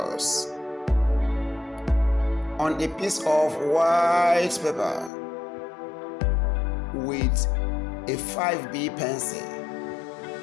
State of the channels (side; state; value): right; drops out; at 5.1 s